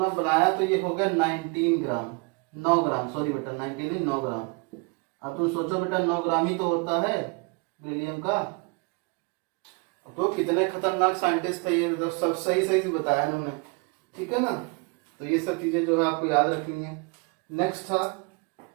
बनाया तो ये हो गया 19 ग्राम, 9 ग्राम, सॉरी बेटा 19 नहीं 9 ग्राम। अब तुम सोचो बेटा 9 ग्राम ही तो होता है बेरिलियम का। तो कितने खतरनाक साइंटिस्ट थे ये, मतलब सब सही सही से बताया उन्होंने, ठीक है ना। तो ये सब चीजें जो है आपको याद रखनी है। नेक्स्ट था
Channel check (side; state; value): left; quieter; 30.3 dB